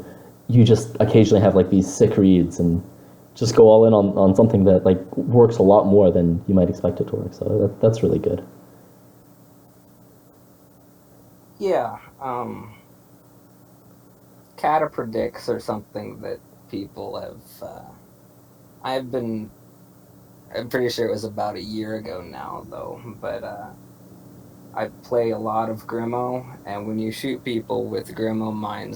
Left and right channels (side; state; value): both; identical; correlation 1.00